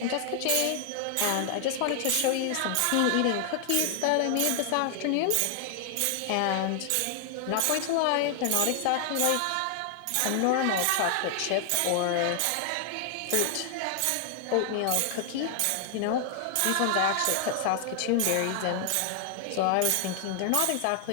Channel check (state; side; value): different; both; correlation 0.00